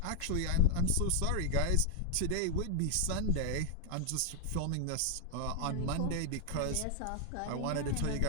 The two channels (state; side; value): different; both; correlation 0.00